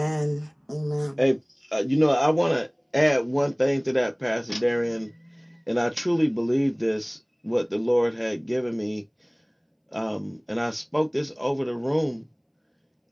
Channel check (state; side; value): identical; both; correlation 1.00